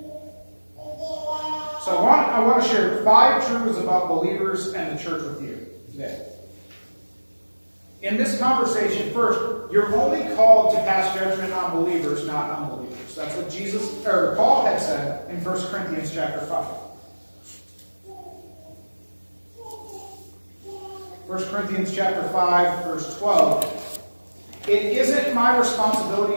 So I want to share 5 truths about believers and the church with you today. In this conversation, first, you're only called to pass judgment on believers, not unbelievers. That's what Paul had said in 1 Corinthians chapter 5. 1 Corinthians chapter 5, verse 12. It isn't my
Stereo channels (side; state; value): both; inverted; correlation -1.00